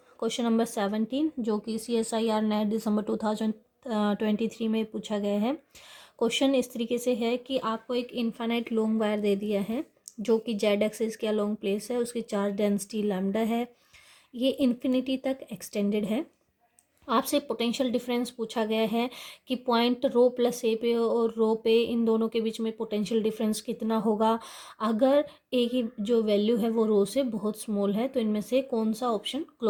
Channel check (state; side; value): identical; both; correlation 1.00